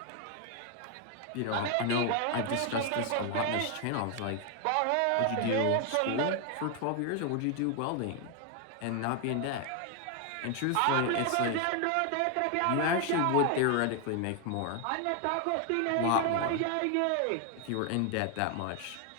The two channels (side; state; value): both; different; correlation 0.00